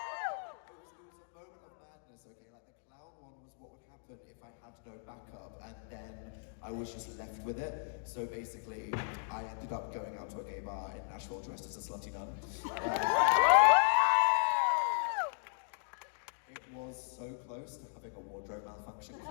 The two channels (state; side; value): silent; right; digital silence